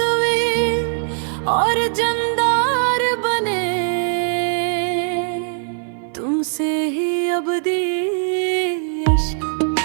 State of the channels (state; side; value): silent; left; 55 dB below the other